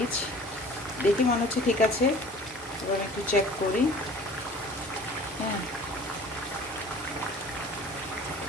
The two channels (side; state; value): both; normal; correlation 0.46